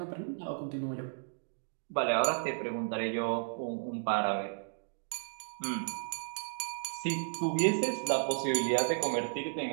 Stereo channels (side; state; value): left; silent; digital silence